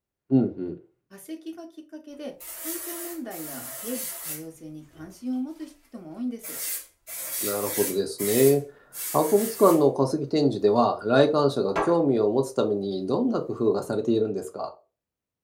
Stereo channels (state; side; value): identical; both; correlation 1.00